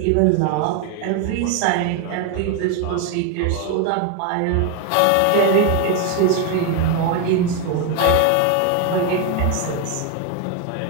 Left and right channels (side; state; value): both; different; correlation 0.01